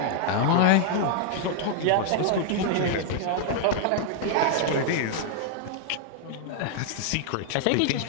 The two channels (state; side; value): different; both; correlation 0.00